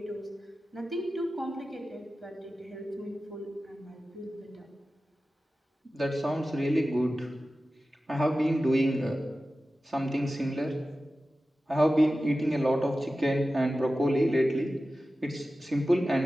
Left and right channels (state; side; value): normal; both; correlation 0.94